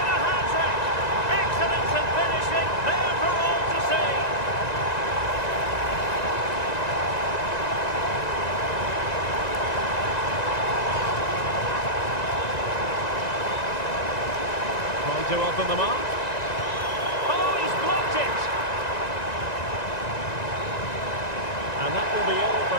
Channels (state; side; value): late; right; 1.9 ms